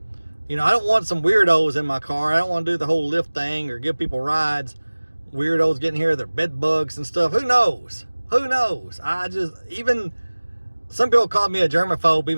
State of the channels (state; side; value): inverted; both; correlation -1.00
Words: You know, I don't want some weirdos in my car. I don't want to do the whole Lyft thing or give people rides. Weirdos getting here, their bed bugs and stuff. Who knows? Who knows? Even some people called me a germaphobe